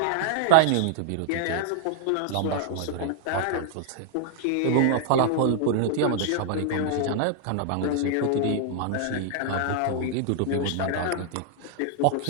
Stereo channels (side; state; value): both; different; correlation 0.00